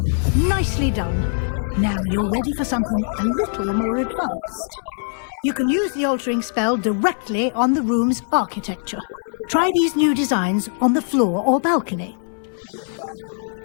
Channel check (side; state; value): right; silent; 65 dB below the other